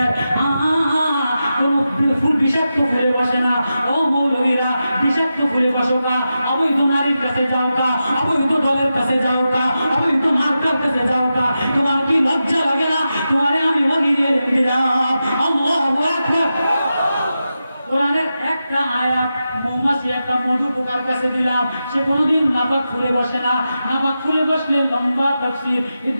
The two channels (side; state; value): both; inverted; correlation -0.90